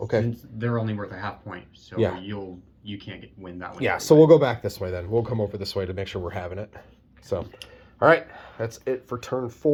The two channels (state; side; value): identical; both; correlation 1.00